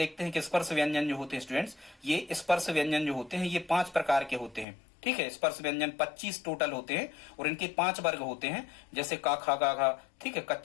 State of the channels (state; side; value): drops out; right; at 4.7 s